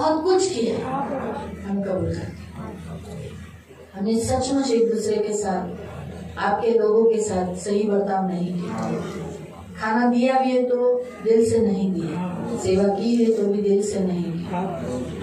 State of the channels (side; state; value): both; identical; correlation 1.00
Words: कुछ किया है. हम कबूल करते हैं, हमने सचमुच एक दूसरे के साथ, आपके लोगों के साथ सही बर्ताव नहीं किया. खाना दिया भी है तो दिल से नहीं दिया, सेवा की है तो भी दिल से नहीं किया.